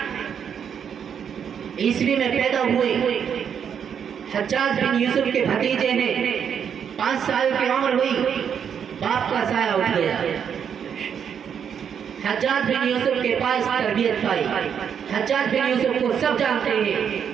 عیسوی میں پیدا ہوئے، حجاج بن یوسف کے بھتیجے ہیں، 5 سال کی عمر ہوئی، باپ کا سایہ اٹھ گیا، حجاج بن یوسف کے پاس تربیت پائی۔ حجاج بن یوسف کو سب جانتے ہیں،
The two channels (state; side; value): quieter; left; 7.8 dB